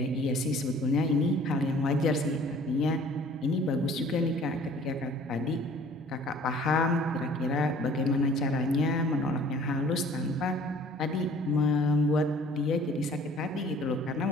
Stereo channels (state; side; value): normal; both; correlation 0.52